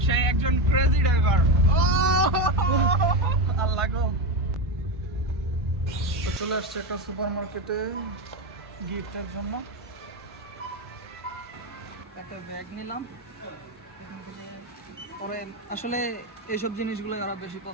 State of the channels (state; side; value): normal; both; correlation 0.14